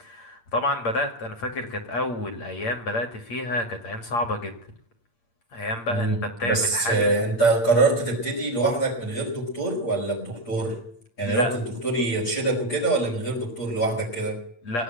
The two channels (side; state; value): right; late; 8.6 ms